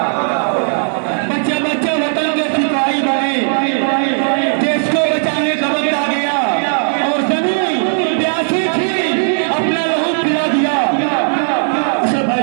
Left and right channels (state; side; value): silent; left; 69 dB below the other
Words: बच्चा बच्चा वतन के सिपाही बने, देश को बचाने का वक्त आ गया। और जमीन प्यासी थी, अपना लहू पिला दिया। अच्छा